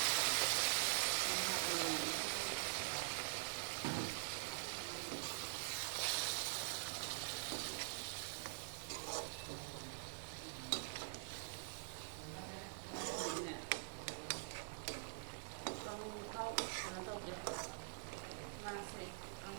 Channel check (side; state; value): left; silent; digital silence